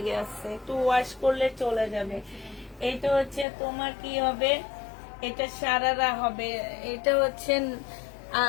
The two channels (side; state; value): right; drops out; at 3.5 s